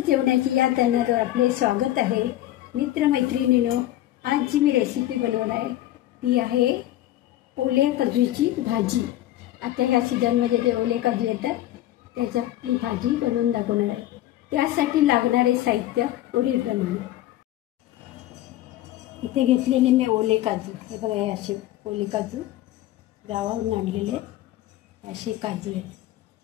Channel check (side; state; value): right; quieter; 14.2 dB